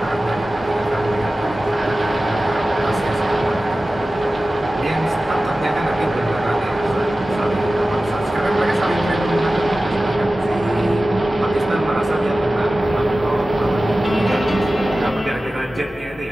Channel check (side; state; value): both; normal; correlation 0.96